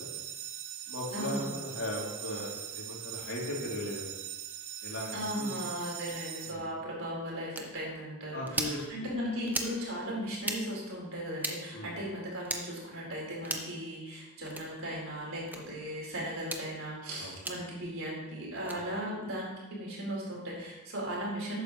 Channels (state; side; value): normal; both; correlation 0.12